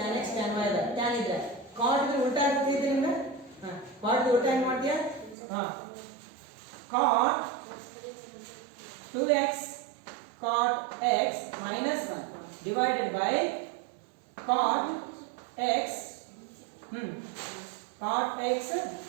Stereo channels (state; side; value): drops out; left; at 5.4 s